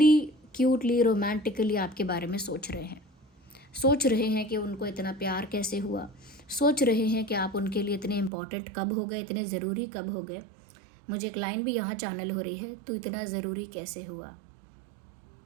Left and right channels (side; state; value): left; drops out; at 8.3 s